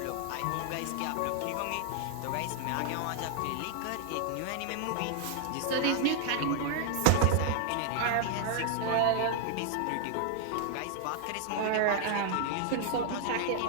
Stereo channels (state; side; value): different; both; correlation 0.00